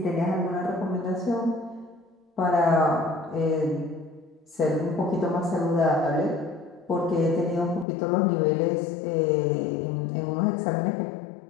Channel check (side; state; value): right; drops out; at 7.9 s